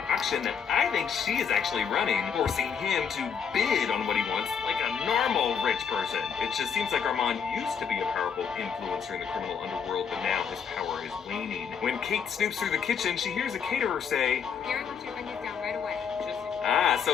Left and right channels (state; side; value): quieter; right; 6.9 dB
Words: auction that I think she is actually running, forcing him to bid on what he wants like a normal rich person. It just seems like Armand used to be a powerful influencer in the criminal underworld, but now his power is waning. When Kate snoops through the kitchen, she hears a caterer say, Gary wants your onions down right away.